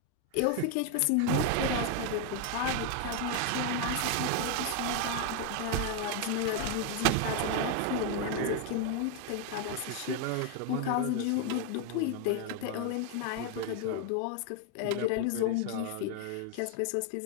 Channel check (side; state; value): both; different; correlation 0.01